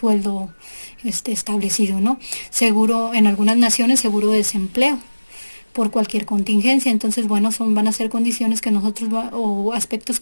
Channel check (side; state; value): both; inverted; correlation -1.00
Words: establecido, ¿no? Seguro, en algunas naciones, seguro de desempleo por cualquier contingencia. Entonces, bueno, van a ser condiciones que o aspectos